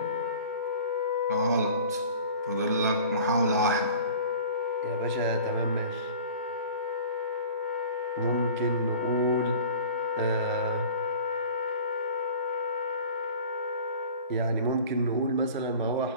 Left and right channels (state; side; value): inverted; both; correlation -0.43